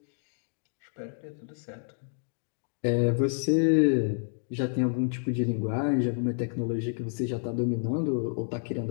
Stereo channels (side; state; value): right; silent; 58 dB below the other